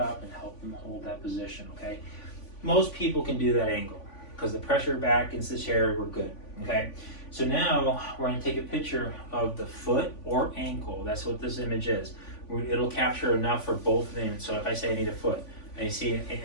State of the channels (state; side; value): late; right; 3.5 ms